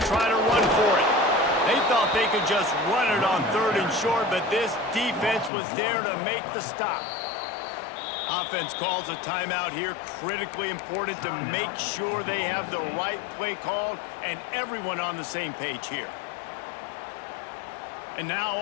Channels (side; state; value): right; drops out; at 5.5 s